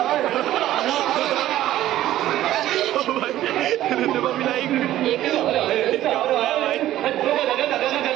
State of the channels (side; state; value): left; quieter; 13.7 dB